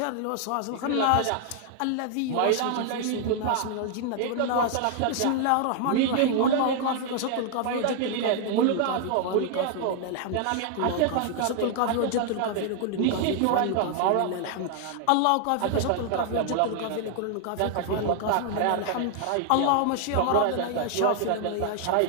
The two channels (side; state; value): both; different; correlation 0.00